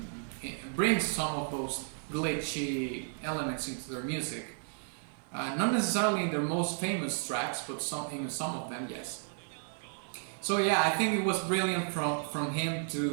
it brings some of those glitchy elements into their music. Not necessarily in their most famous tracks, but in some of them, yes. So yeah, I think it was brilliant from him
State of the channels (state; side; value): silent; left; 55 dB below the other